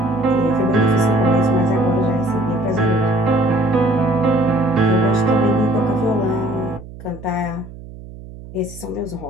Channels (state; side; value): noise; right; hum, 16 dB below the sound